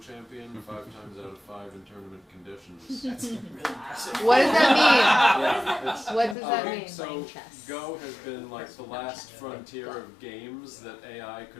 champion 5 times out of 5 in tournament conditions. That's really impressive. What does that mean? Yeah, it's, What does that mean? so Go has been like the last frontier of games that AI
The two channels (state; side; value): drops out; right; at 6.4 s